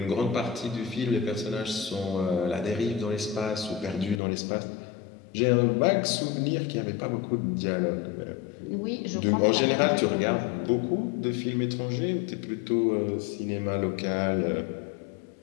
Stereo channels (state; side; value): drops out; right; at 4.2 s